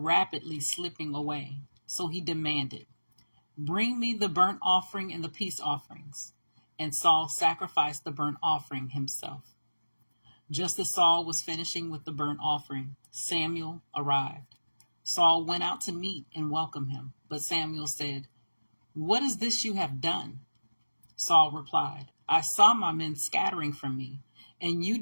slipping away, so he demanded, "Bring me the burnt offering and the peace offerings." And Saul sacrificed the burnt offering himself. Just as Saul was finishing with the burnt offering, Samuel arrived. Saul went out to meet and welcome him, but Samuel said, "What is this you have done?" Saul replied, "I saw my men scattering from me, and you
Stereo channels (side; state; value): both; inverted; correlation -1.00